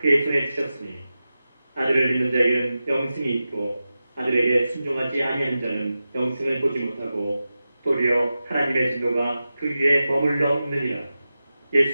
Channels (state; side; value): inverted; both; correlation -0.93